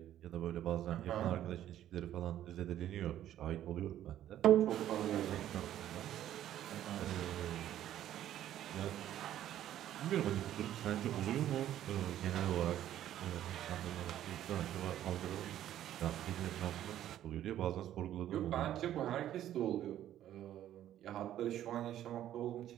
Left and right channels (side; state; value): left; quieter; 11.9 dB